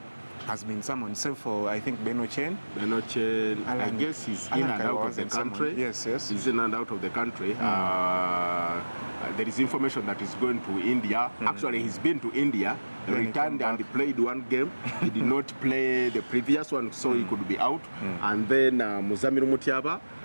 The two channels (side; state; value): both; inverted; correlation -1.00